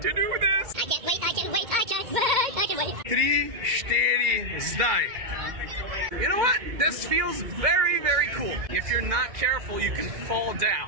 to do this. I can't wait, I can't wait, I can't wait, I can wait. 3, 4, zdaj. You know what? This feels very, very cool. If you're not careful, you can fall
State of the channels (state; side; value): late; left; 2.1 ms